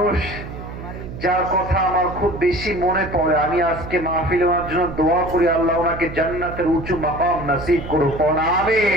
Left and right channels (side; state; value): right; noise; hum, 10 dB below the sound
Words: যার কথা আমার খুব বেশি মনে পড়ে। আমি আজকে মাহফিলে ওনার জন্য দোয়া করি, আল্লাহ ওনাকে জান্নাতের উঁচু মাকাম নসিব করুক।